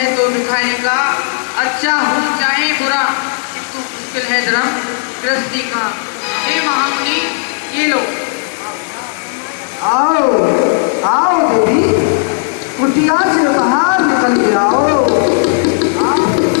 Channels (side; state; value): right; silent; digital silence